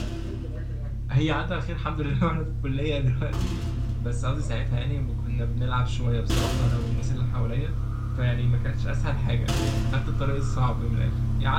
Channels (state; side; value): identical; both; correlation 1.00